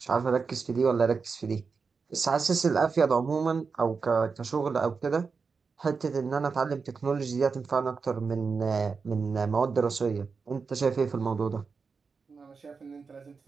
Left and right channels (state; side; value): quieter; left; 5.1 dB